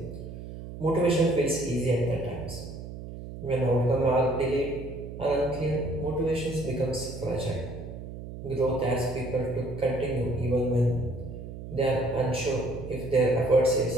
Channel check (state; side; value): noise; right; hum, 11 dB below the sound